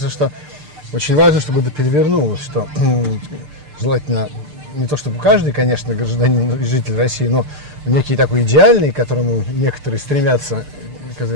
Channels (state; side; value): late; left; 6.7 ms